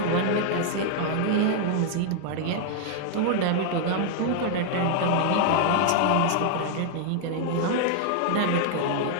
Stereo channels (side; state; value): both; different; correlation 0.00